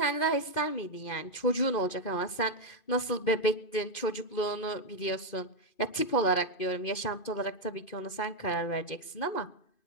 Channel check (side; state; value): right; late; 2.5 ms